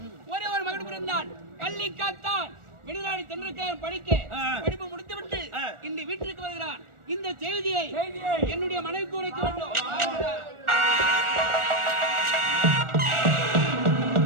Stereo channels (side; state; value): left; late; 1.4 ms